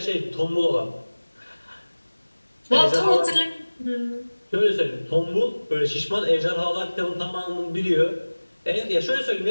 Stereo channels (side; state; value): both; inverted; correlation -1.00